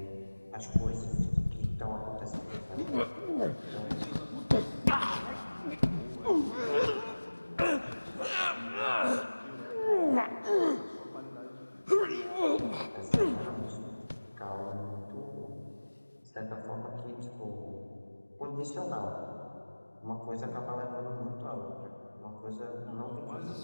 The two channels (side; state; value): both; inverted; correlation -1.00